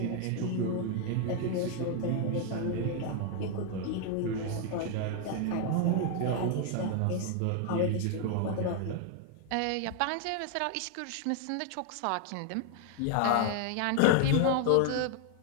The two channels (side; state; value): both; different; correlation 0.00